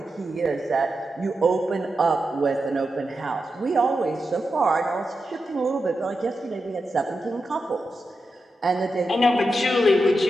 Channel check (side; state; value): both; normal; correlation 0.88